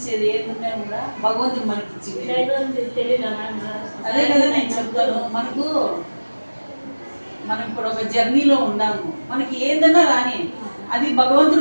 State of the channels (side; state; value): both; inverted; correlation -1.00